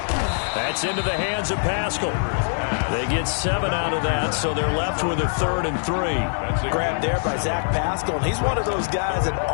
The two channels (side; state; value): right; silent; 63 dB below the other